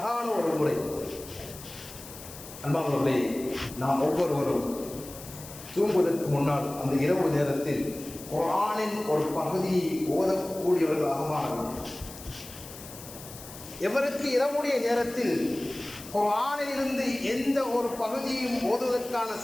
ஒரு முறை. அன்பானவர்களே, நாம் ஒவ்வொருவரும் தூங்குவதற்கு முன்னால் அந்த இரவு நேரத்தில் குர்ஆனின் ஒரு பகுதியை ஓதக்கூடியவர்களாக மாற வேண்டும். எவருக்கு இரவுடைய நேரத்தில் குர்ஆனிலிருந்து எந்த ஒரு பகுதியும் ஓதுவதற்கான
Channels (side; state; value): left; noise; hiss, 15 dB below the sound